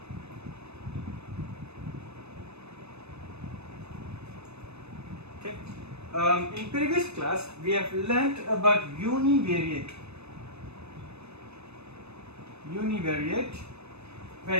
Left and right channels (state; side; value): late; left; 0.80 ms